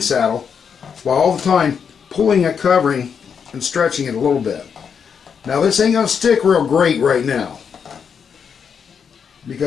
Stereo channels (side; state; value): right; quieter; 6.8 dB